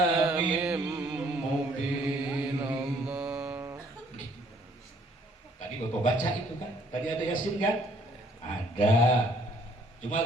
mubin. Tadi Bapak baca itu kan, tadi ada Yasin kan? Ada.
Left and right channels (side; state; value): both; normal; correlation 0.62